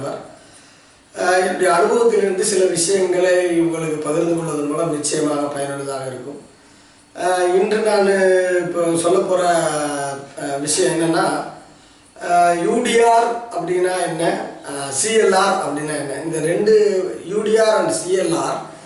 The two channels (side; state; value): both; identical; correlation 1.00